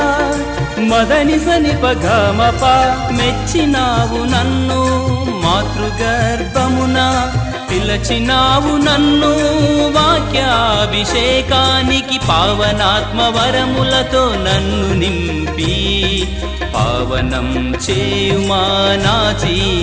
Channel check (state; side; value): identical; both; correlation 1.00